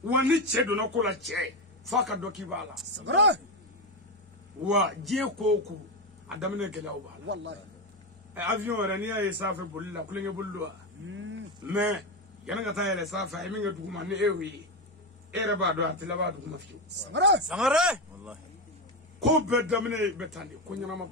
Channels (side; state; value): both; normal; correlation 0.13